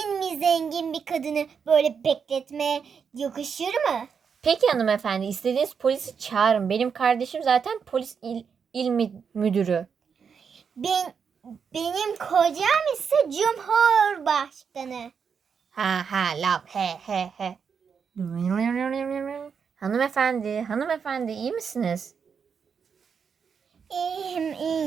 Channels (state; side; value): quieter; left; 6.5 dB